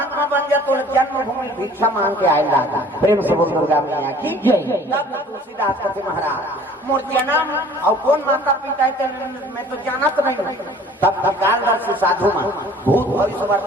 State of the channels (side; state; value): both; normal; correlation 0.50